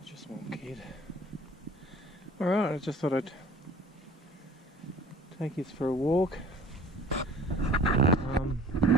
a small kid. Alright, I just thought I'd take you for a walk.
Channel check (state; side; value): normal; both; correlation 0.48